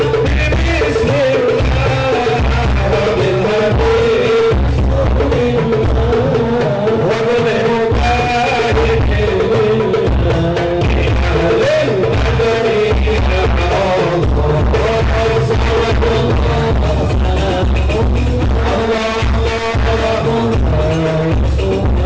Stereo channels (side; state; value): both; identical; correlation 1.00